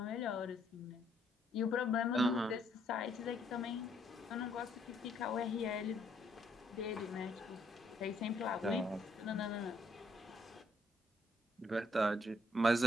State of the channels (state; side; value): normal; both; correlation 0.70